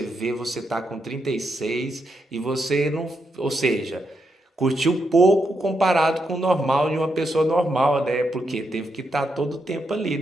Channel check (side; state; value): both; normal; correlation 0.82